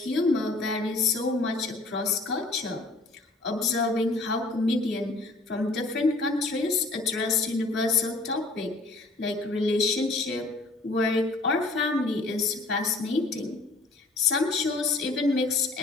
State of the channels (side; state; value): right; quieter; 3.1 dB